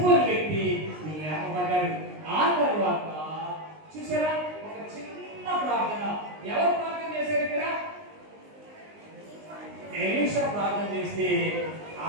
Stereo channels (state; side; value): late; left; 19 ms